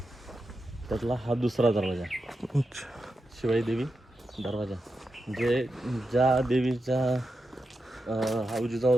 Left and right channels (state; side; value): normal; both; correlation 0.88